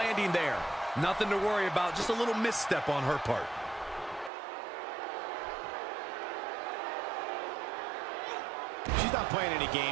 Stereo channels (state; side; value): drops out; left; at 4.3 s